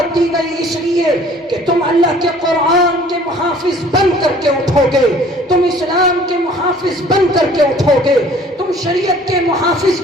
دی گئی اس لیے کہ تم اللہ کے قرآن کے محافظ بن کر کے اٹھو گے، تم اسلام کے محافظ بن کر کے اٹھو گے، تم شریعت کے محافظ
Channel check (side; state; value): both; normal; correlation 0.53